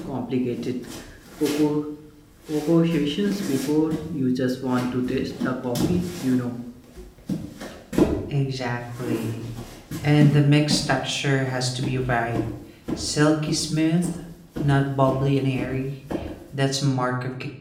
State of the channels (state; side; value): identical; both; correlation 1.00